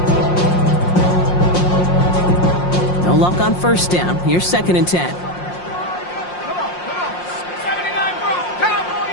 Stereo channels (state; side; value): late; right; 5.6 ms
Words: No luck on 1st down. Here's 2nd and 10. Come on. 79 bro. Cowboy.